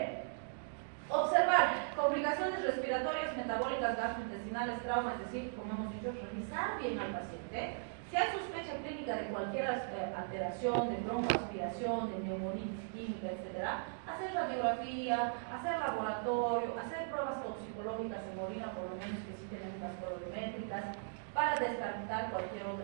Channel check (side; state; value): left; silent; digital silence